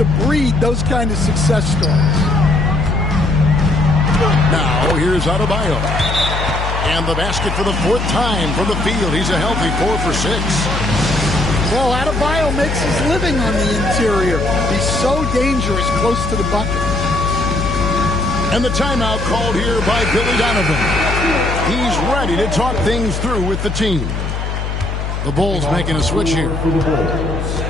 breed those kind of success stories. Now, here's Adebayo. And the basket for the 4th time from the field. He's a healthy 4 for 6. Well, Adebayo makes his living on the interior. He's so dangerous close to the bucket. And the timeout called here by Billy Donovan. He's ready to talk things through with the team. The Bulls making a switch here.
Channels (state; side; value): noise; left; hum, 3 dB below the sound